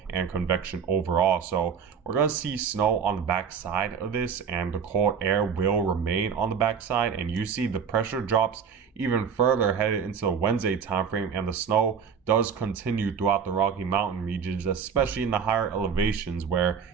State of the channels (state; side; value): quieter; left; 6.8 dB